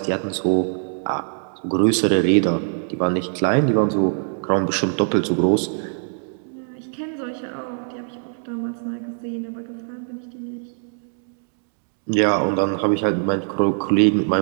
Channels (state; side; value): silent; left; digital silence